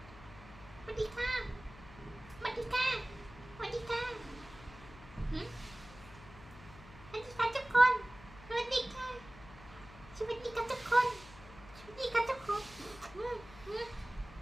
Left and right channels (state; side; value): noise; left; hum, 18 dB below the sound